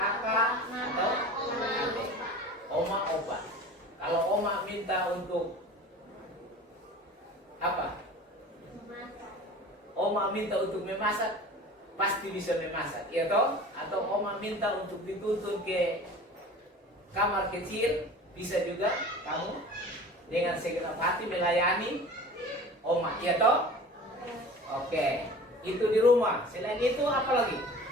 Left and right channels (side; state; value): both; normal; correlation 0.40